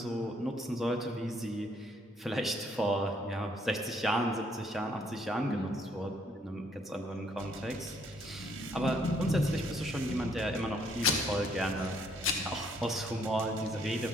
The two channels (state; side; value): normal; both; correlation 0.68